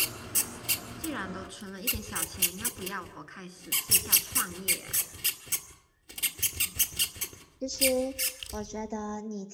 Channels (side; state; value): both; identical; correlation 1.00